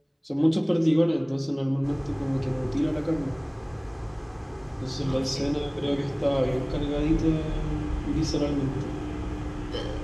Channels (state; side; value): identical; both; correlation 1.00